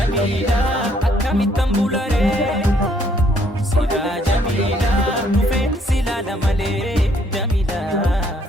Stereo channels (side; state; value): both; normal; correlation 0.67